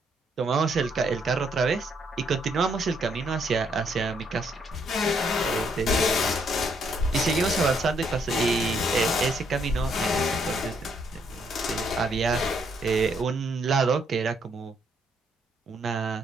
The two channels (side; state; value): both; normal; correlation 0.72